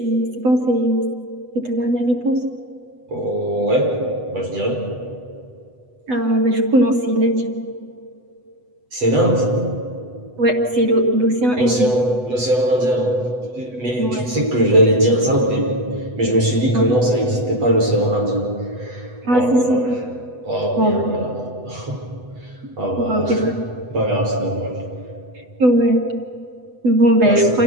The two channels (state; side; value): late; left; 8.0 ms